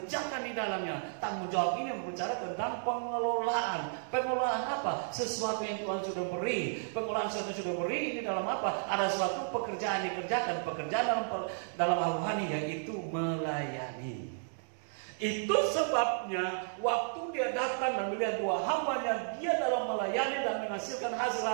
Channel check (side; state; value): left; silent; 56 dB below the other